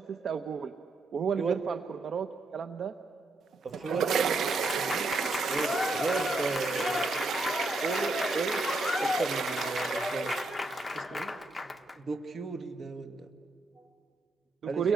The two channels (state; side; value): quieter; left; 3.0 dB